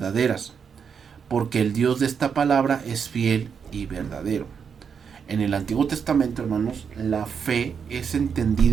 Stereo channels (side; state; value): left; quieter; 6.7 dB